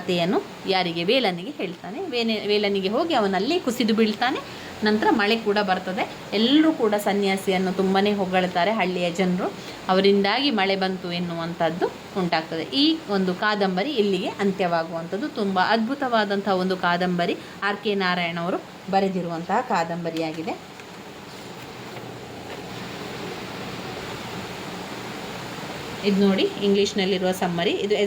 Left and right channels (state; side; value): identical; both; correlation 1.00